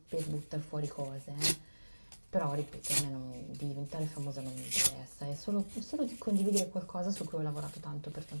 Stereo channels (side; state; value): both; inverted; correlation -1.00